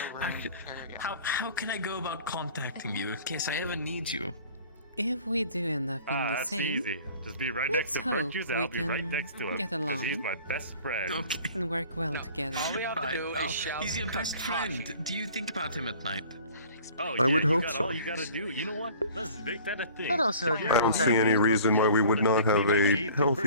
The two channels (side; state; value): both; inverted; correlation -0.47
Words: How can I go about contacting you in case I ever need you? If we do end up in the That's same, easy. Just be right let's next to hope Virtues, and we I'll be right can next to him. get 'cause along. he's my best friend. Okay. and work well All we together. have to Right. do Oh, is shout. he's your best friend. Do you think about him at night? Oh, I would you hope got so. All you gotta do. You know what? Let's make that a thing. I'd also agree I don't with see that. any reason why we would not have a